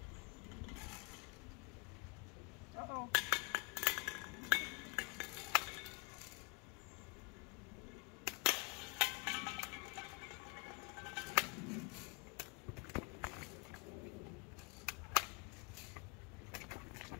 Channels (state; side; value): quieter; right; 30.0 dB